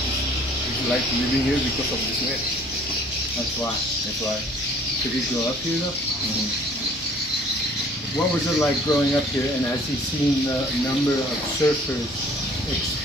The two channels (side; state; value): both; normal; correlation 0.54